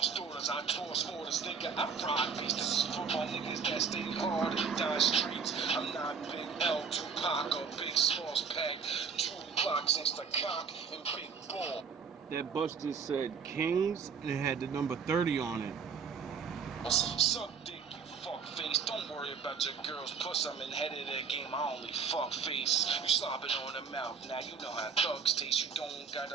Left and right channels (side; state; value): left; quieter; 6.0 dB